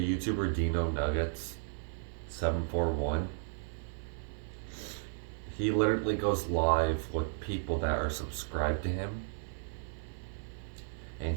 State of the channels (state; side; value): silent; left; 55 dB below the other